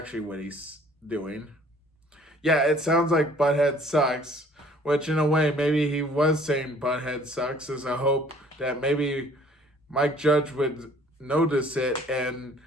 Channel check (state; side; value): normal; both; correlation 0.56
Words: what he's doing. Yeah, it sounds like Butthead sucks, which in a way, maybe he was saying Butthead sucks as a hope that maybe Mike Judge would notice it and,